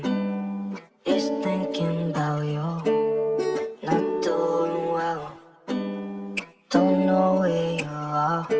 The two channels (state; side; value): identical; both; correlation 1.00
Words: is thinking about you. Not doing well, don't know where you are,